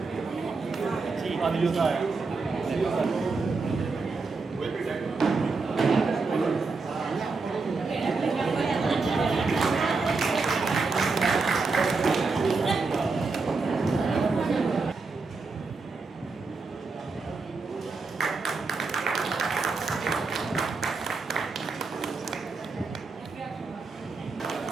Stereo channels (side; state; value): left; quieter; 4.2 dB